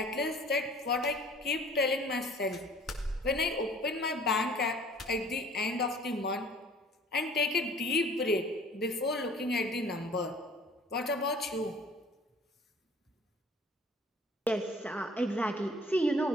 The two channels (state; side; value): normal; both; correlation 0.51